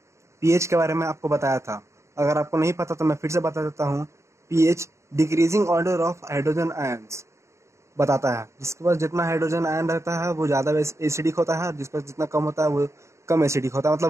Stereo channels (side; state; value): left; late; 0.14 ms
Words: पीएच के बारे में आपको बताया था। अगर आपको नहीं पता तो मैं फिर से बता देता हूँ। PH decreasing order of hydrogen ions बताता है। जिसके पास जितना हाइड्रोजन आयन रहता है वो ज़्यादा एसिडिक होता है, और जिसके पास जितना कम होता है वो कम एसिडिक होता है,